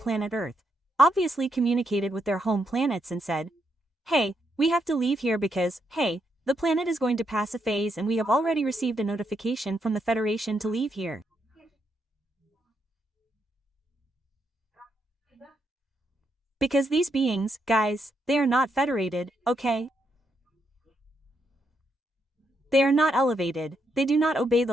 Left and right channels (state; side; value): normal; both; correlation 0.79